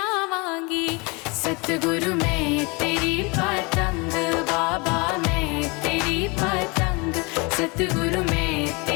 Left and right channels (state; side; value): quieter; right; 28.3 dB